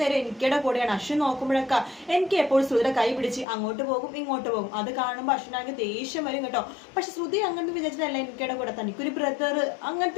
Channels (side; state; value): right; drops out; at 3.5 s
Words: എനിക്കടെ കൂടെയാണ്. അശ്വിൻ നോക്കുമ്പോഴൊക്കെ എനിക്ക് എപ്പോഴും ശ്രുതിയുടെ കൈ പിടിച്ച് അങ്ങോട്ട് പോകും ഇങ്ങോട്ട് പോകും. അത് കാണുമ്പോൾ അശ്വിനാണെങ്കിൽ ദേഷ്യം വരും കേട്ടോ. പക്ഷെ ശ്രുതി അങ്ങനത്തെ വിചാരിച്ചിട്ടല്ല എനിക്കടെ കൂടെ, തനിക്കൊരു ബ്രദർ